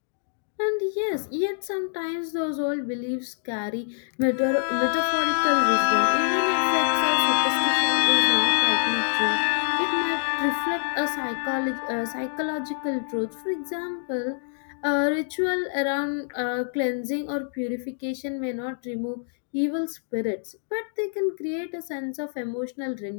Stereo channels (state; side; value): silent; right; digital silence